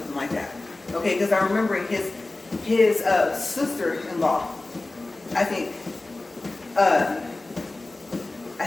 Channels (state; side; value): quieter; right; 3.0 dB